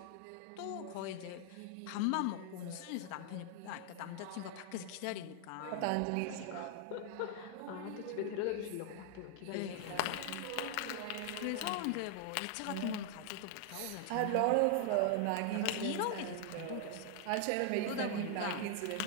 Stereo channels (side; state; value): both; different; correlation 0.00